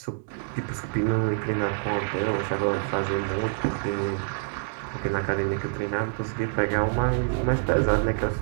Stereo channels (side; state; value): left; silent; digital silence